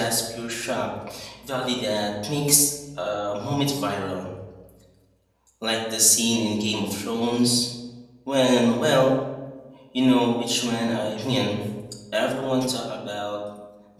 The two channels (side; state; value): both; identical; correlation 1.00